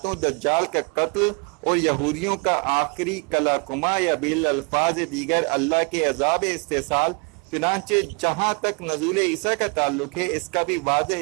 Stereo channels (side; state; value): left; quieter; 32.8 dB